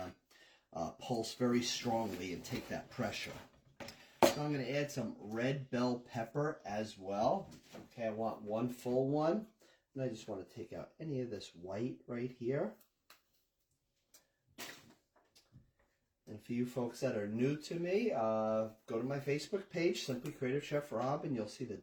pulse very strongly and take that pressure. So I'm going to add some red bell pepper as well. Okay, I want 1 full one. And I just want to take out any of this white right here. And for you folks that are new to me, go to my Facebook page, Simply Creative Chef Rob, and you'll see the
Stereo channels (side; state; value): both; identical; correlation 1.00